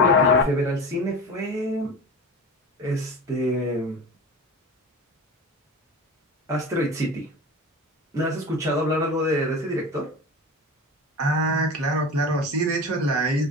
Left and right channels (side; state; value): both; normal; correlation 0.30